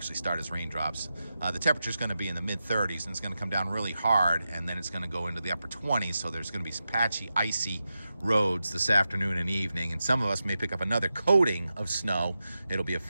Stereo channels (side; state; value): both; inverted; correlation -0.90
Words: start as raindrops. The temperature is going to be in the mid-30s, and it's going to come down really hard, and then it's going to go into the upper 20s. So there's going to be some patchy, icy roads this afternoon and evening, and some of us may pick up another coating of snow. It'll be a